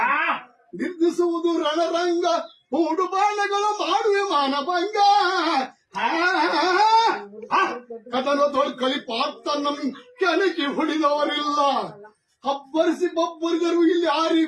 ನಿರ್ದಿಸುವುದು ರಣರಂಗ. ಮೂಡು ಬಾಣಗಳು ಮಾಡುವೆ ಮಾನಭಂಗ. ಕದನ ತೊಳ್ಕಳಿ ಪಾರ್ಥ ನಮ್ ಕೆಣಕಿ ಹೊಡಿದವರಿಲ್ಲ. ಹಬ್ಬರಿಸಿ ಬಬ್ಬರಿಗರು ಇಲ್ಲಿ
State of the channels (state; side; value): identical; both; correlation 1.00